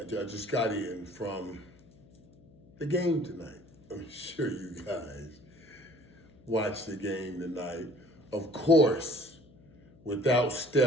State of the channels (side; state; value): left; noise; hum, 26 dB below the sound